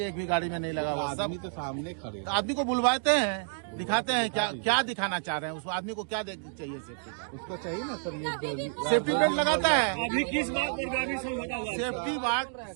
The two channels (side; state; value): left; silent; digital silence